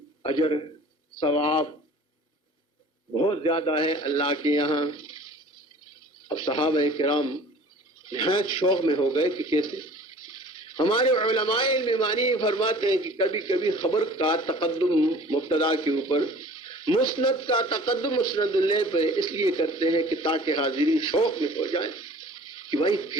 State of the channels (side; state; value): both; normal; correlation 0.47